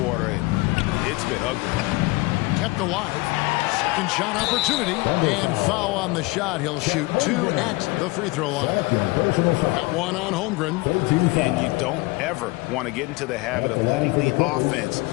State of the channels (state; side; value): quieter; right; 23.3 dB